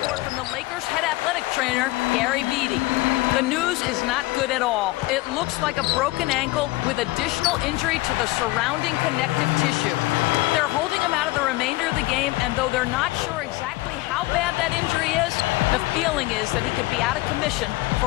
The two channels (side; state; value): right; quieter; 20.2 dB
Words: from the Lakers head athletic trainer, Gary Beatty. The news is not good at all. It looks like a broken ankle with additional injury to the surrounding connective tissue. They're holding him out of the remainder of the game, and though they're not sure exactly how bad that injury is, the feeling is that he could be out of commission